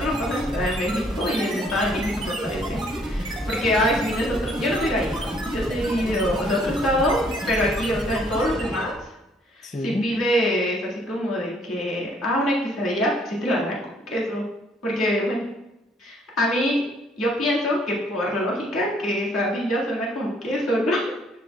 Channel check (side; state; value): both; normal; correlation 0.64